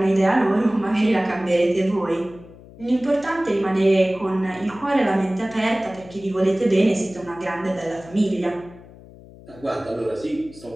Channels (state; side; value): noise; left; hum, 20 dB below the sound